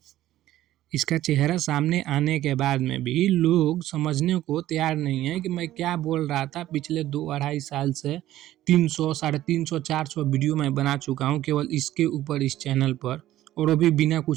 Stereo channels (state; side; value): quieter; left; 14.1 dB